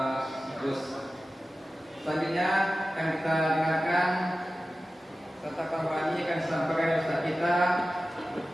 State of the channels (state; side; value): normal; both; correlation 0.95